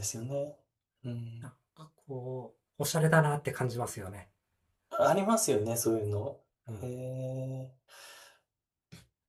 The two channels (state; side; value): identical; both; correlation 1.00